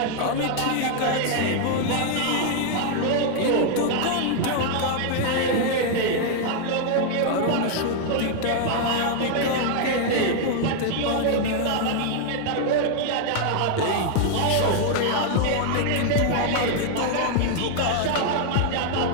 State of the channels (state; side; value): different; both; correlation 0.00